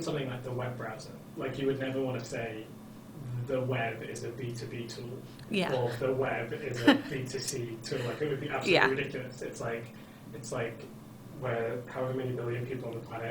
something like the web browser, you would never want to say the web is a B2B tool, or the web is a B2C tool. It would be absolutely ridiculous. It's like where however many billion people on the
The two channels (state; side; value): identical; both; correlation 1.00